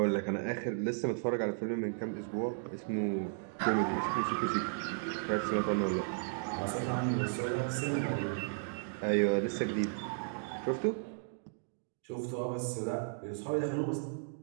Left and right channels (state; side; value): silent; left; digital silence